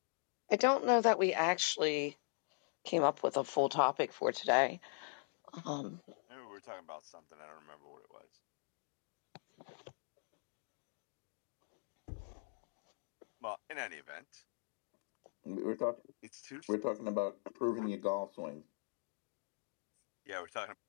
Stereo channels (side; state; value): right; silent; digital silence